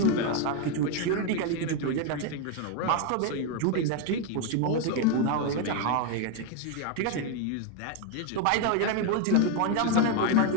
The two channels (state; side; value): different; both; correlation 0.01